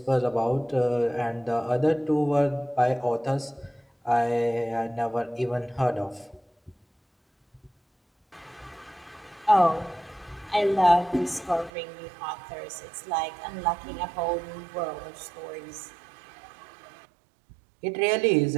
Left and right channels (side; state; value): left; drops out; at 11.7 s